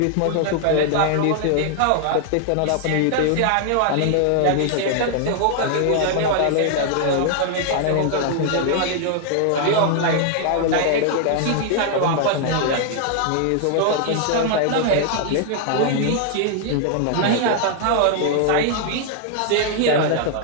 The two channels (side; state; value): both; different; correlation 0.00